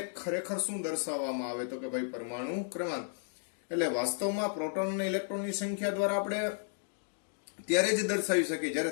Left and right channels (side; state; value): right; silent; digital silence